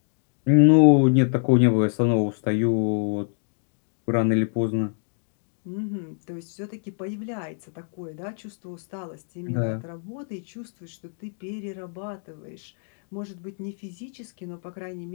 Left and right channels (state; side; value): silent; right; digital silence